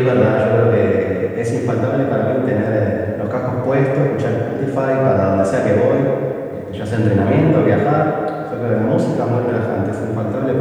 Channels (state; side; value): identical; both; correlation 1.00